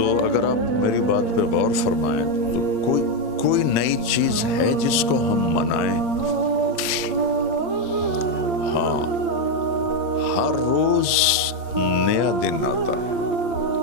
اگر آپ میری بات پہ غور فرمائیں تو کوئی نئی چیز ہے جس کو ہم منائیں؟ ہاں ہر روز نیا دن آتا ہے،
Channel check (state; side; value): late; right; 8.7 ms